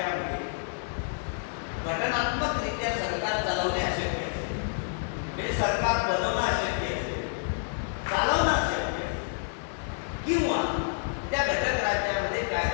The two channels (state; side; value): silent; right; 58 dB below the other